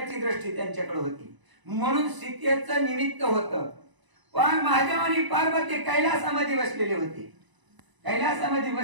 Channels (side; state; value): left; late; 1.0 ms